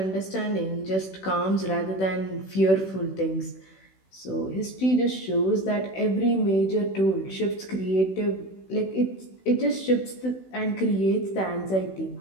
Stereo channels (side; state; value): right; late; 16 ms